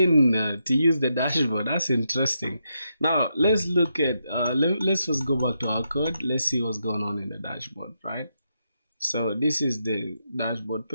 to use the dashboard. That's interesting. Now let's look at let's first go back to our code. Let's see what's going on in the dashboard, right? So this is the dashboard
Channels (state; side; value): inverted; both; correlation -0.83